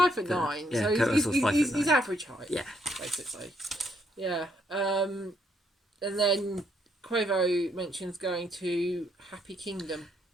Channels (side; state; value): both; normal; correlation 0.73